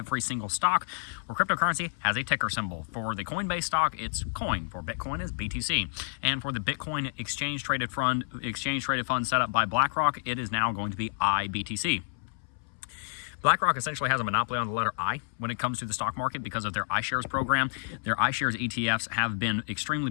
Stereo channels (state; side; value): silent; right; 58 dB below the other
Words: single stock or cryptocurrency has a ticker symbol. For the Coinbase stock, it's coin. For Bitcoin, it's BTC. And for the Bitcoin exchange-traded fund set up by BlackRock, it is now going to be IBTC. BlackRock essentially has a monopoly on the letter I when it comes to the stock market because of their iShares program. Their iShares ETFs have been extremely